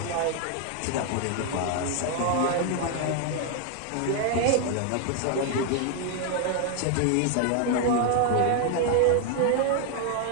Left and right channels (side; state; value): both; different; correlation 0.00